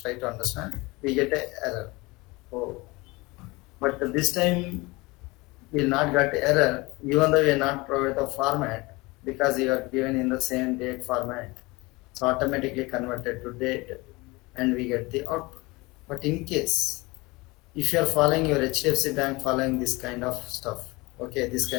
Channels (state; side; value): quieter; right; 23.6 dB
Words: to understand. We get a error. Oh, but this time we will not get error, even though we are not provide the format because you are given in the same date format. So automatically converted to date, and we get the output. But in case if you are following your HDFC bank following this kind of stuff, okay, this